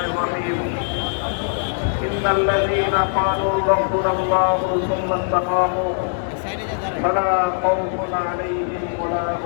الرحيم. إن الذين قالوا ربنا الله ثم استقاموا فلا خوف عليهم ولا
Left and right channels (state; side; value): silent; right; digital silence